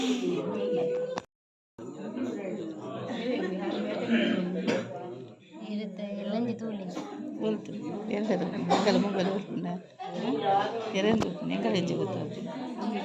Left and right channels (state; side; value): identical; both; correlation 1.00